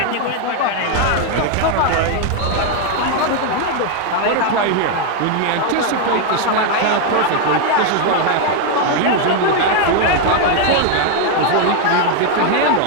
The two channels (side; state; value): both; different; correlation 0.01